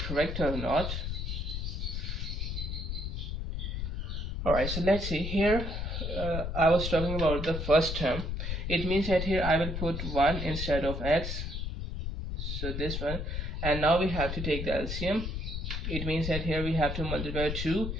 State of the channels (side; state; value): left; noise; rumble, 3 dB below the sound